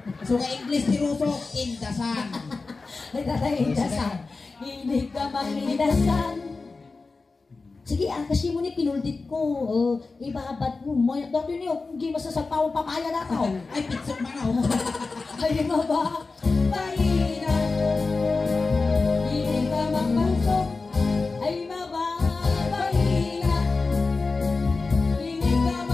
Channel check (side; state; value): right; quieter; 3.9 dB